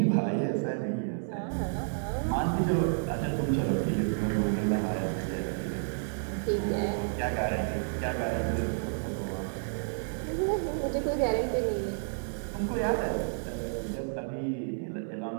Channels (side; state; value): left; silent; 56 dB below the other